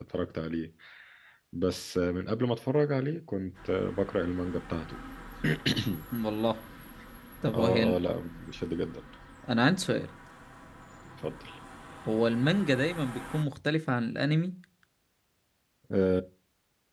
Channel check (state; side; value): identical; both; correlation 1.00